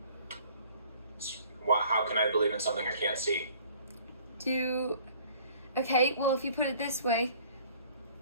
How can I believe in something I can't see? Okay, well, if you put it this way,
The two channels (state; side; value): inverted; both; correlation -0.53